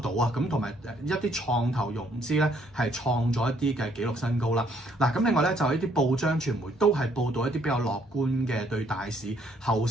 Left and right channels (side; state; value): both; normal; correlation 0.67